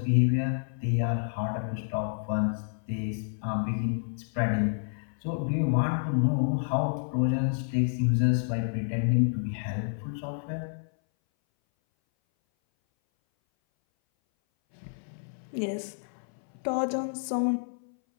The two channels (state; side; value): silent; right; 59 dB below the other